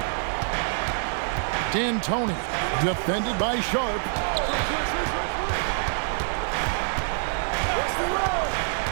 D'Antoni, defended by Sharp.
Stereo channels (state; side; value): silent; left; 61 dB below the other